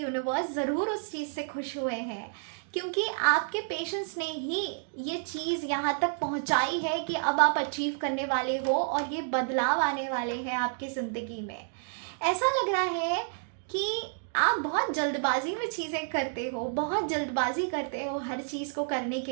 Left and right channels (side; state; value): left; silent; digital silence